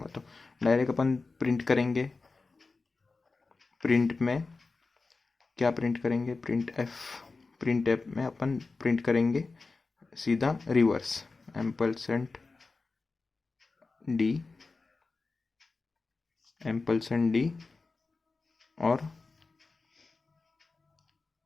तो डायरेक्ट अपन प्रिंट करेंगे। प्रिंट में क्या प्रिंट करेंगे, प्रिंट एफ में अपन प्रिंट करेंगे सीधा रिवर्स एम्पलसेंड डी और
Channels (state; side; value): quieter; right; 3.9 dB